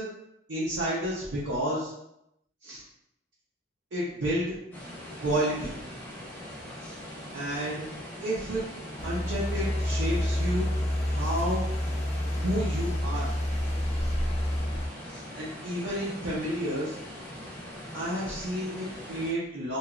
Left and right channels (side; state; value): both; normal; correlation 0.63